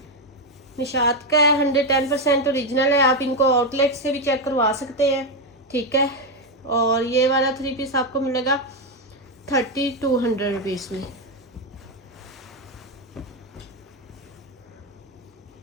निशात का है, 110% ओरिजिनल है। आप इनको आउटलेट से भी चेक करवा सकते हैं। ठीक है, और ये वाला 3 पीस आपको मिलेगा 3200 रुपीज़ में।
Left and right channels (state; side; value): normal; both; correlation 0.06